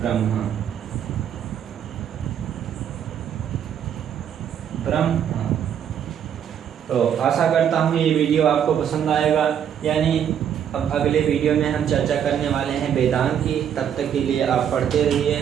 ब्रह्मा। तो आशा करता हूँ ये वीडियो आपको पसंद आएगा। यानी अब अगले वीडियो में हम चर्चा करने वाले हैं वेदांत की। तब तक के लिए आप पढ़ते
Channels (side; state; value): left; quieter; 9.0 dB